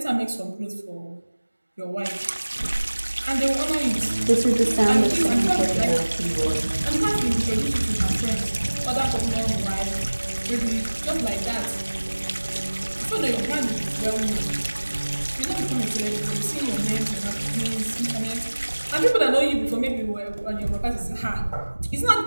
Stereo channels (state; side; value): inverted; both; correlation -1.00